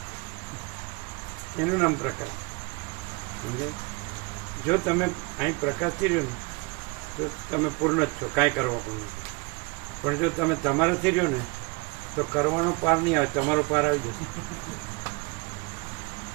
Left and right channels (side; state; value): left; quieter; 27.9 dB